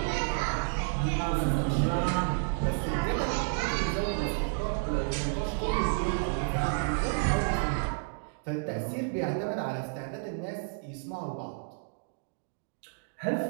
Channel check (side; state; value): left; silent; digital silence